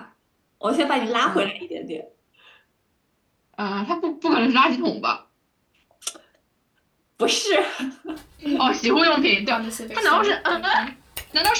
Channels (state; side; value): identical; both; correlation 1.00